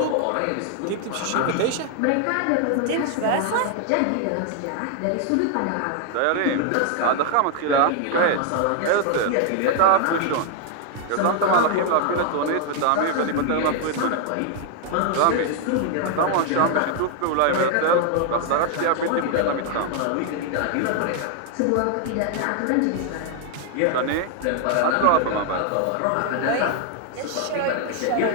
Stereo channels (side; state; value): both; different; correlation 0.00